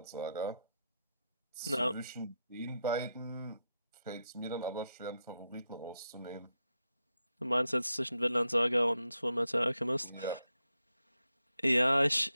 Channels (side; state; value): both; inverted; correlation -0.85